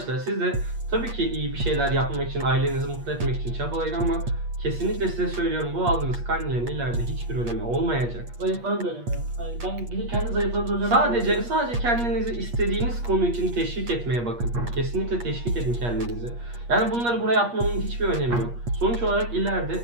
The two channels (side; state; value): left; late; 8.4 ms